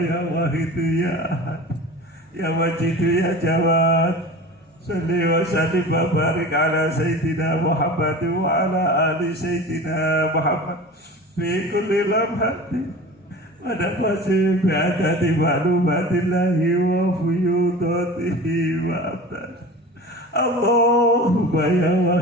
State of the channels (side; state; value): both; normal; correlation 0.36